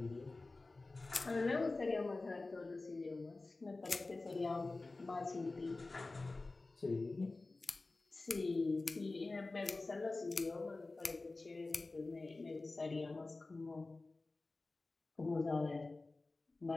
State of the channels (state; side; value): quieter; right; 3.3 dB